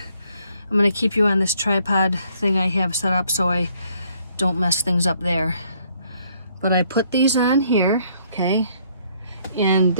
I'm gonna keep you on this tripod thing I have set up so I don't mess things up there. But I put these on here, okay? And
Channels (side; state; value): both; inverted; correlation -0.66